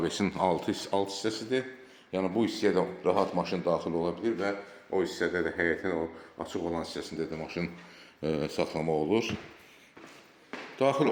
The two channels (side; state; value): both; identical; correlation 1.00